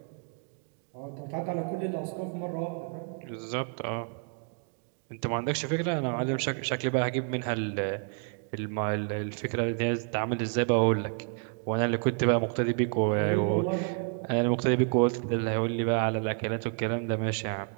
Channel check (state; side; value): quieter; left; 39.9 dB